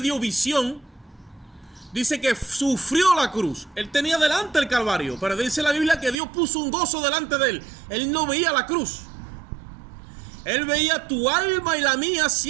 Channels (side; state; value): left; drops out; at 6.2 s